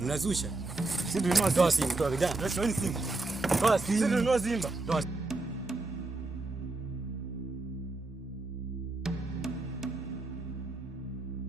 Unazusha. Sisi tulinunua Toa simu, toa vijana. Toa Simba. Toa simu. Sisi tulinunua Simba. Toa.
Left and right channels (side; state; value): left; quieter; 3.1 dB